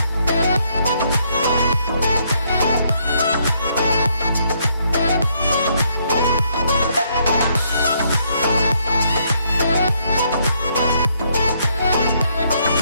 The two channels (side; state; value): both; inverted; correlation -0.71